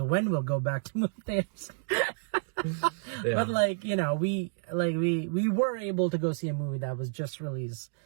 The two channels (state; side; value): silent; left; digital silence